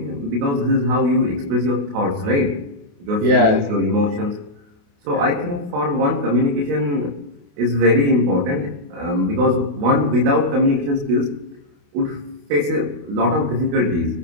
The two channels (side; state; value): left; late; 28 ms